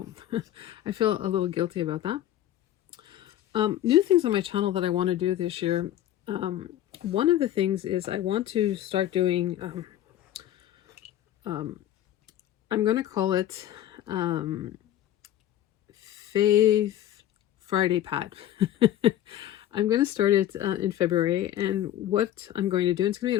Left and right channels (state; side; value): quieter; right; 12.5 dB